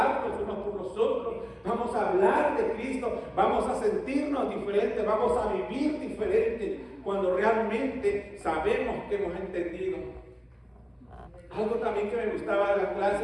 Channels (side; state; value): both; identical; correlation 1.00